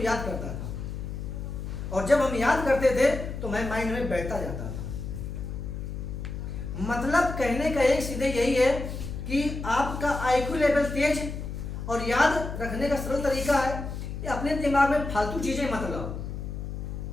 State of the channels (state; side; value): noise; left; hum, 6 dB below the sound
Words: करता था, और जब हम याद करते थे तो मैं माइंड में बैठता जाता था। मतलब कहने का एक सीधे यही है कि आपका आईक्यू लेवल तेज और याद रखने का सरल तरीका है कि अपने दिमाग में फालतू चीजें मत लाओ,